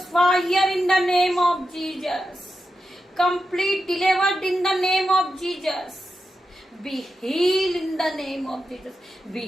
fire in the name of Jesus, complete delivered in the name of Jesus, be heal in the name of Jesus,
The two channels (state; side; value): normal; both; correlation 0.89